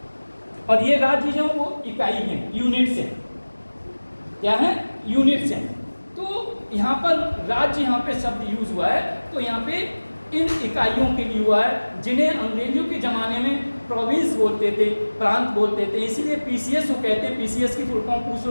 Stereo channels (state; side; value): inverted; both; correlation -1.00